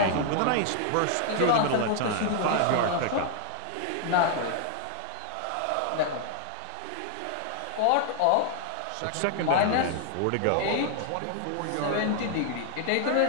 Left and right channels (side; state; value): both; different; correlation 0.00